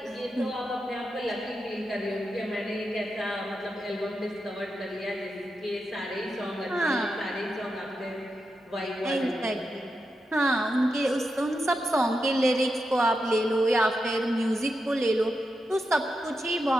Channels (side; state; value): both; normal; correlation 0.87